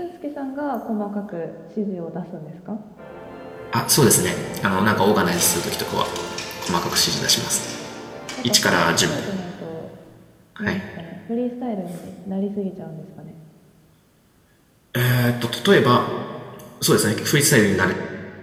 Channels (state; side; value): identical; both; correlation 1.00